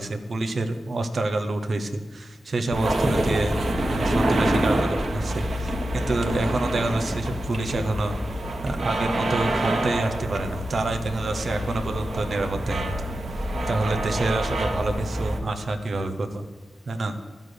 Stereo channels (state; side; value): normal; both; correlation 0.91